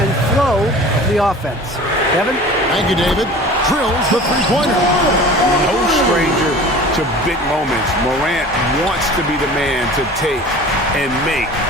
flow of the offense. Kevin? Thank you, David. Drills the three-pointer. No stranger to big moments. Morant wants to be the man to take and make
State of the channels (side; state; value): both; normal; correlation 0.41